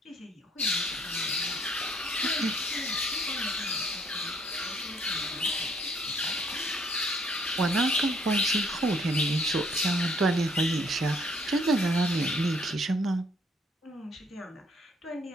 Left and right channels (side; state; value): both; normal; correlation 0.65